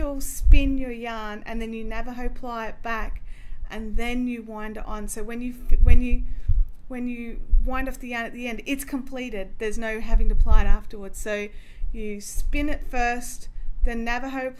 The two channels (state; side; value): identical; both; correlation 1.00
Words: your yarn, and then you Navajo ply it back, and then you wind it on. So when you wind off the yarn at the end, it's completed. There's no having to ply it afterwards. So you spin it first, then Navajo